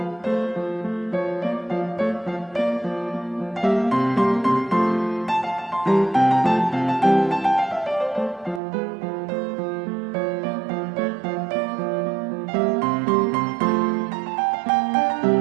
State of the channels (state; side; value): drops out; left; at 8.6 s